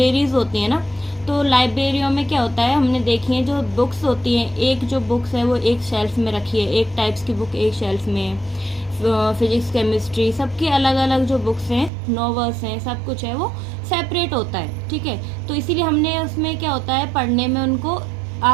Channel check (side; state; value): left; drops out; at 11.9 s